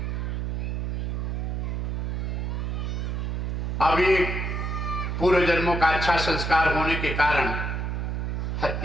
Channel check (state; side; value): noise; right; hum, 1 dB below the sound